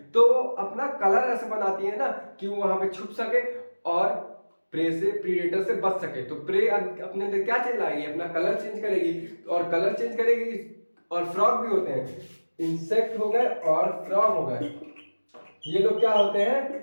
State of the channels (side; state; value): both; inverted; correlation -1.00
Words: तो वो अपना कलर ऐसे बनाती है ना कि वो वहां पे छुप सके और प्रे से प्रीडेटर से बच सके। तो प्रे अपने अंदर क्या चेंज लाएगी, अपना कलर चेंज करेगी, और कलर चेंज करेगी। और फ्रॉग भी होते हैं, इंसेक्ट हो गए और फ्रॉग हो गए, ये लोग क्या होते